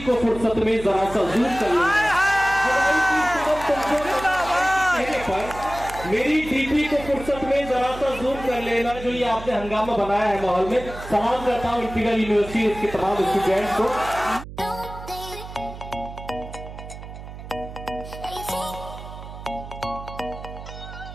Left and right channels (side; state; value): right; noise; hum, 12 dB below the sound